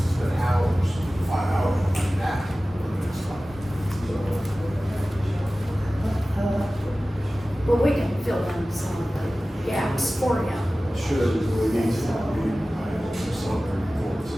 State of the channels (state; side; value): normal; both; correlation 0.96